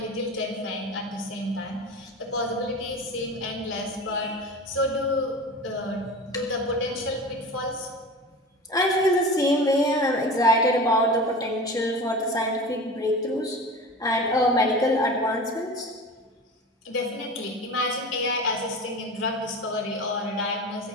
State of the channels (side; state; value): both; normal; correlation 0.33